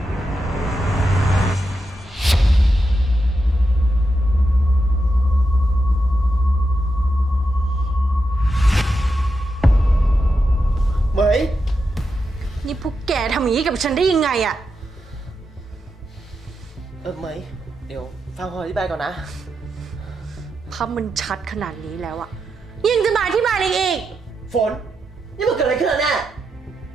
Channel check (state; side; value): normal; both; correlation 0.86